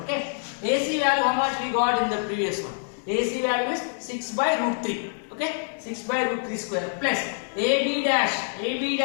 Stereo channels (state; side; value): silent; right; digital silence